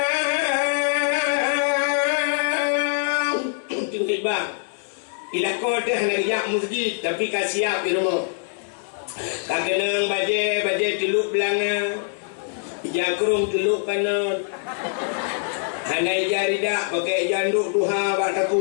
Bang, ilako teh nak masjid tapi kasiap di rumah. Kagenang baje teluk belanga, jakrung teluk kanan. Hanai jari dak pakai janduk duha bak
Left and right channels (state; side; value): silent; right; digital silence